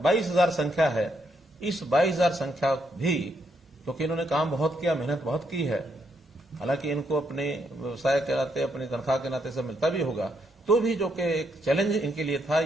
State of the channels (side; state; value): both; normal; correlation 0.76